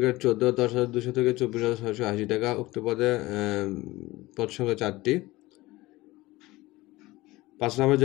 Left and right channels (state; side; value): quieter; right; 19.5 dB